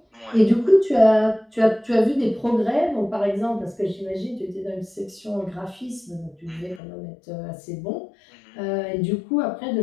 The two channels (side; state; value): right; drops out; at 6.8 s